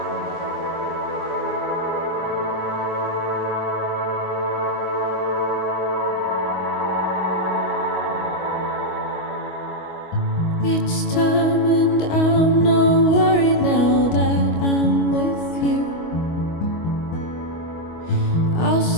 It's time and I'm not worried now that I'm with you. I'll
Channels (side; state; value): right; late; 25 ms